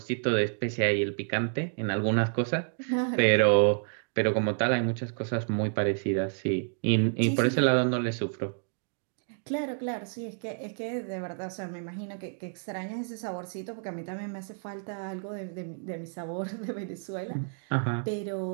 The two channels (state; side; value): silent; left; 58 dB below the other